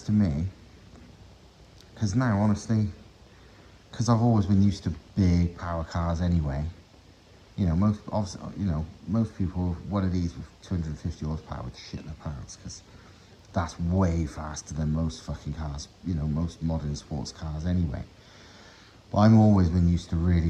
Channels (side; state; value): both; identical; correlation 1.00